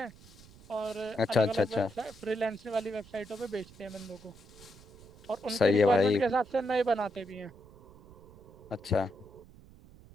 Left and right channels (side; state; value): right; noise; rumble, 21 dB below the sound